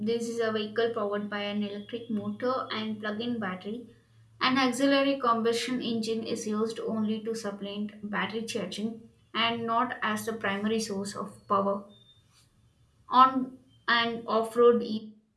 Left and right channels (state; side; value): identical; both; correlation 1.00